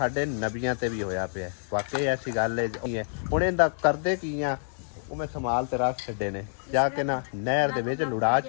नबियां ते भी होया पिया। वाकई ऐसी गल है हुण इहदा करदे की आ ਉਹ ਮੈਂ ਸੰਭਾਲ ਤੇ ਰੱਖ ਛੱਡੇ ਨੇ ਜਾ ਕੇ ਨਾ ਨਹਿਰ ਦੇ ਵਿੱਚ ਲੁੜਾ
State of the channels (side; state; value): right; silent; digital silence